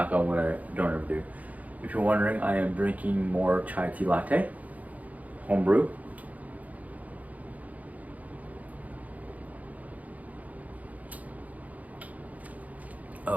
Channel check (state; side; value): late; left; 0.075 ms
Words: on wood, I don't ever do. If you're wondering, I am drinking more chai tea latte, homebrew.